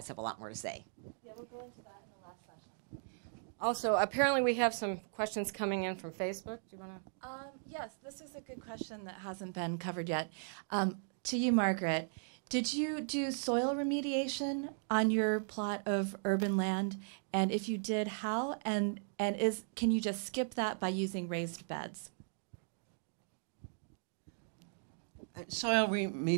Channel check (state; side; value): silent; left; digital silence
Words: have a lot more to say. Yeah, we'll go into that in the last session. Also, apparently we have some questions coming in from Facebook. Do you want to? Yes, this is a good question that hasn't been covered yet. To you, Margaret, did you do soil remediation on your plot of urban land? And if you did, how? And can you just skip that by using raised beds? Soil